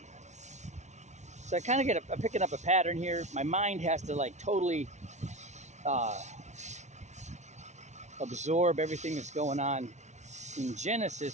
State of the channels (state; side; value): late; left; 0.33 ms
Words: so I kind of I'm picking up a pattern here. My mind has to totally uh, absorb everything that's going on in